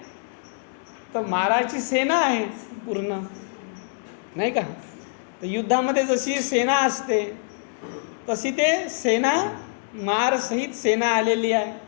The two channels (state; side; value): silent; right; digital silence